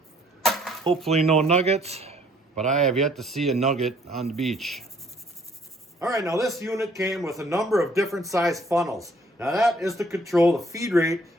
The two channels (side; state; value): both; normal; correlation 0.62